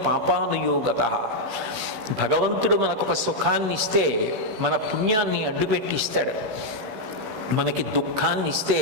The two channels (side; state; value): left; late; 16 ms